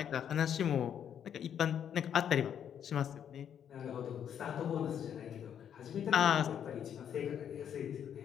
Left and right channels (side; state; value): right; quieter; 9.0 dB